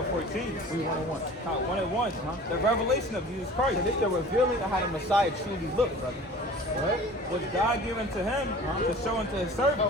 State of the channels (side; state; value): both; normal; correlation 0.43